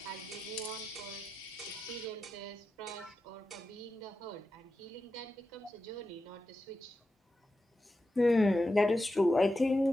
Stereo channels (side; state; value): both; normal; correlation 0.90